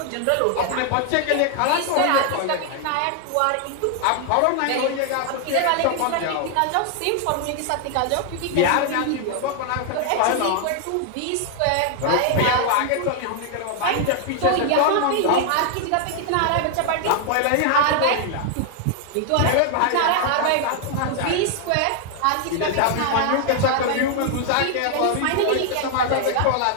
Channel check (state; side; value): different; both; correlation 0.00